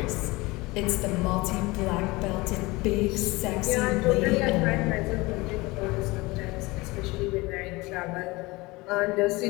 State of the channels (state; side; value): quieter; right; 22.5 dB